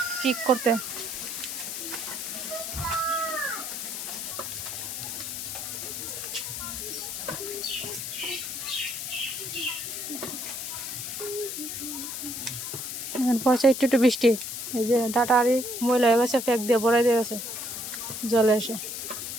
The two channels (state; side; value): noise; left; hiss, 5 dB below the sound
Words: ঠিক করতে। পয়সা একটু একটু বৃষ্টি, এই যে ডাটা আরি ময়লা হয়ে গেছে, ফ্যাক দিয়ে ভরাই দিয়ে গেছে জলে এসে,